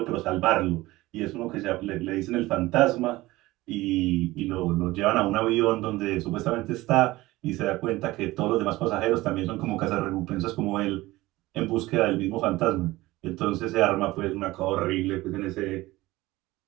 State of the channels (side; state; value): left; quieter; 18.8 dB